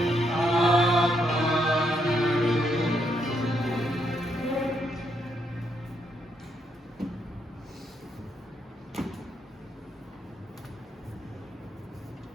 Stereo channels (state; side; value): normal; both; correlation 0.77